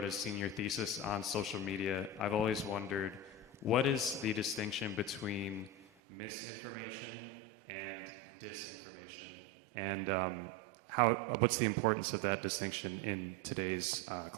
a senior thesis on social media, I've always wondered, what is the distinction between misinformation and disinformation, and what's the importance of that distinction in today's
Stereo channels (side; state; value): left; drops out; at 5.9 s